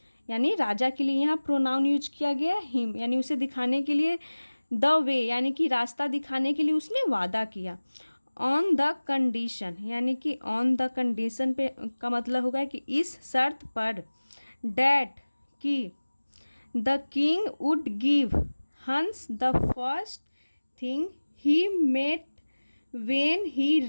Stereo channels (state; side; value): inverted; both; correlation -1.00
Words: यानी राजा के लिए यहाँ प्रोनाउन यूज किया गया है हिम, यानी उसे दिखाने के लिए। द वे यानी कि रास्ता दिखाने के लिए उसने वादा किया। ऑन द कंडीशन यानी कि ऑन द कंडीशन पे का मतलब होगा कि इस शर्त पर, डैट कि the king would give Hans the first thing he met when he